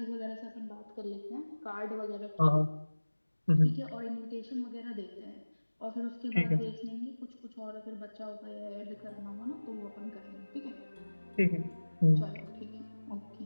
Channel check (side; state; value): both; inverted; correlation -1.00